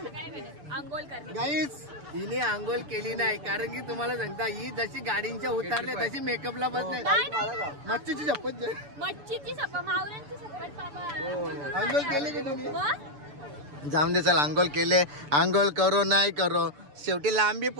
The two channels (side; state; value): left; late; 6.9 ms